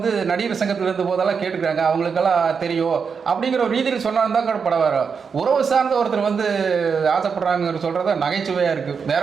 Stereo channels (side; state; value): left; quieter; 5.9 dB